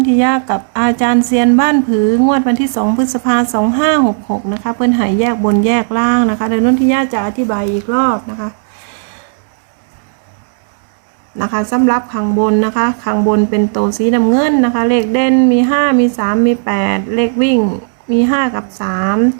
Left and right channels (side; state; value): left; silent; digital silence